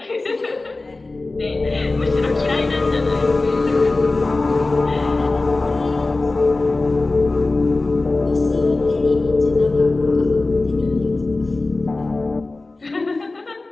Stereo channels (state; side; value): quieter; right; 3.2 dB